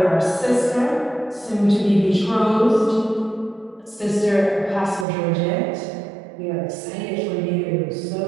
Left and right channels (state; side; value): drops out; left; at 5.1 s